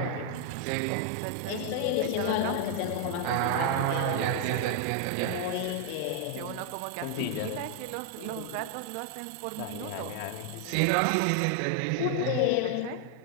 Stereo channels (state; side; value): different; both; correlation 0.00